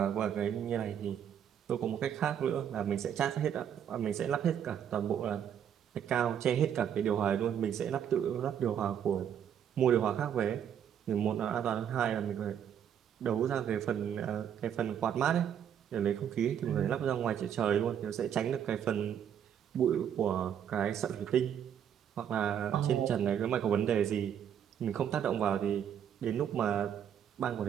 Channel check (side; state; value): left; quieter; 9.0 dB